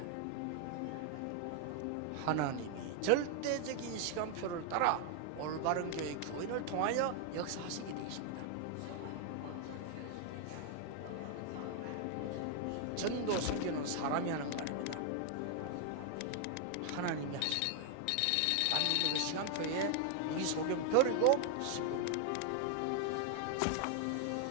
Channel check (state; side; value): different; both; correlation 0.00